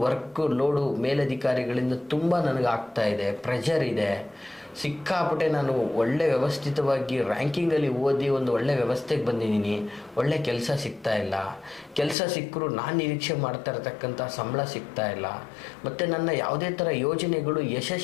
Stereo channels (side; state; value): right; drops out; at 12.2 s